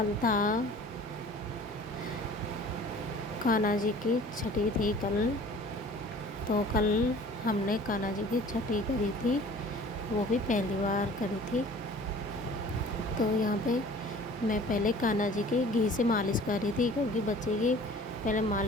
था कान्हा जी की छठी थी कल। तो कल हमने कान्हा जी की छठी करी थी, वो भी पहली बार करी थी। तो यहाँ पे मैं पहले कान्हा जी की घी से मालिश कर रही थी, क्योंकि बच्चे की पहले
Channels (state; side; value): normal; both; correlation 0.47